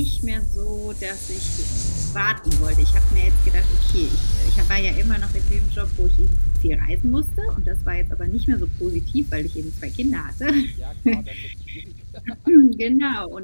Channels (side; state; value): both; inverted; correlation -1.00